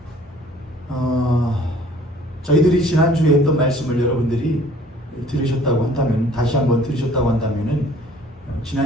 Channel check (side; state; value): both; normal; correlation 0.54